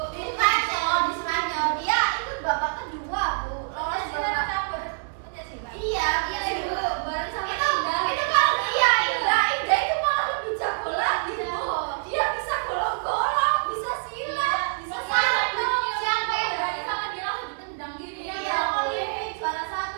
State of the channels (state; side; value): silent; left; digital silence